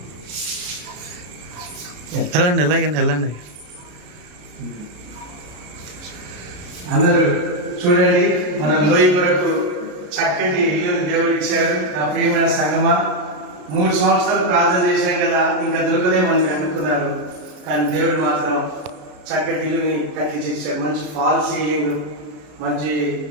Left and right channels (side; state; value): left; late; 33 ms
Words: వెళ్ళండి వెళ్ళండి. అందరూ చూడండి, మన లోయ కొరకు చక్కటి ఇల్లుని దేవుడు ఇచ్చారు. నా ప్రియమైన సంగమా, 3 సంవత్సరాలు ప్రార్థన చేశాం కదా, ఇంకా దొరకదే మనకి అనుకున్నారు. కానీ దేవుడు మాత్రం చక్కటి ఇల్లుని కట్టించాడు. మంచి ఫాల్ సీలింగ్, మంచి